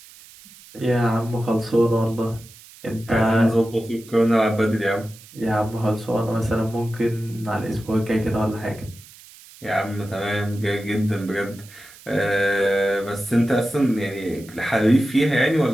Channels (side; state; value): right; noise; hiss, 21 dB below the sound